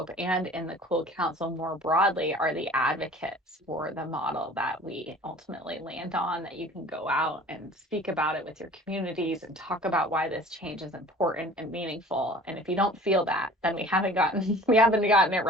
and in the Cool Council more broadly are the advocates for the model that we ultimately land on, that you can go out and speak about it with your communities and talk about why this change is important and meaningful. And if you don't feel that, then we haven't gotten it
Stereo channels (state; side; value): normal; both; correlation 0.46